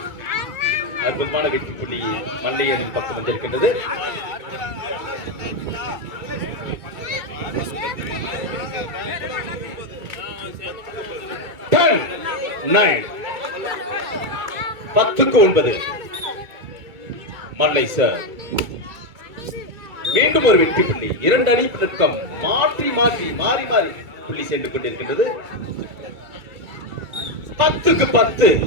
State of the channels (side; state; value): left; late; 2.3 ms